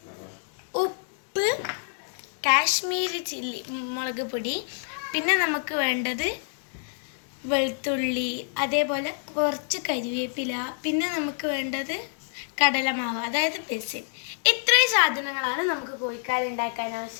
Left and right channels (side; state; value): right; silent; digital silence